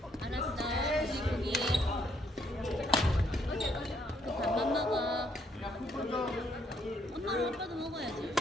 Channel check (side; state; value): both; normal; correlation 0.71